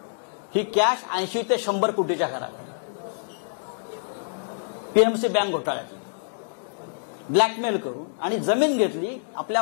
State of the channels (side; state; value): right; silent; digital silence